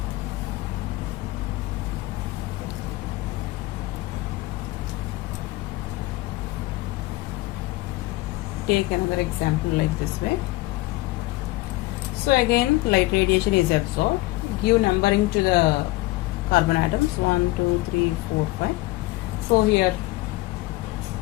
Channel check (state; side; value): quieter; right; 19.8 dB